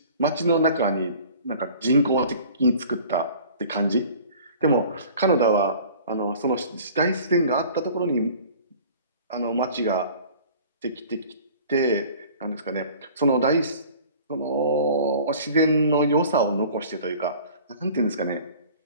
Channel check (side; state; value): both; inverted; correlation -0.46